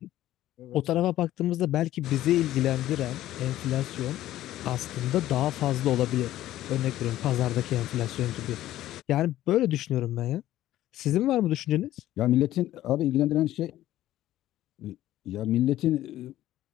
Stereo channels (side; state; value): right; quieter; 14.0 dB